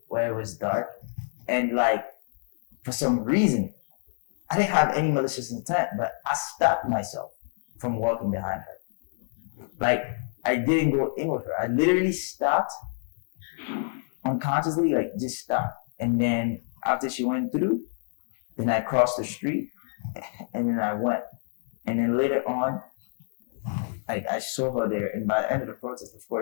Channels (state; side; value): silent; right; digital silence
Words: where it was dark, and like, for some reason, I didn't have any malicious intent, but I stopped myself from walking behind her. Like, I didn't go in with her. I literally stopped unconsciously, like just stopped. And then after she went through, then I crossed the street and then I went. And then later on, I saw her there. And by the end of the protest, of